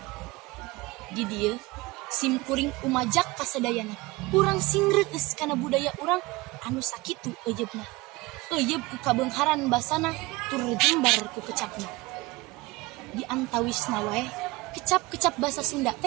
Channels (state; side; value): quieter; left; 22.0 dB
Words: di dieu simkuring umajak ka sadayana urang singreueus kana budaya urang anu sakitu euyeubna. Euyeub ku kabeungharan basana tur jembar ku kecapna. Di antawisna wae kecap-kecap basa Sunda